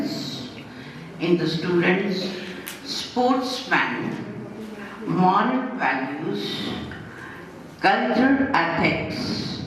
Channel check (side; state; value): both; identical; correlation 1.00